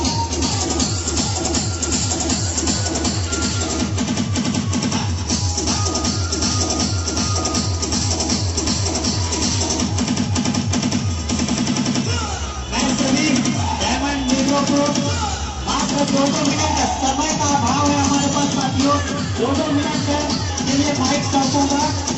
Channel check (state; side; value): identical; both; correlation 1.00